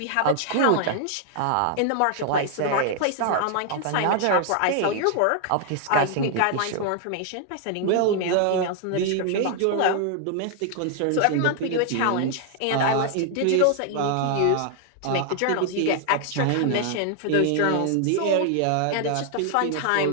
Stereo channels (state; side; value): different; both; correlation 0.00